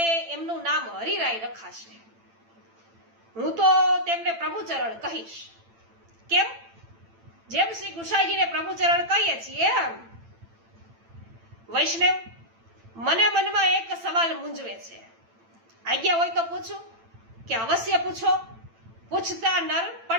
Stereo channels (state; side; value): late; left; 8.9 ms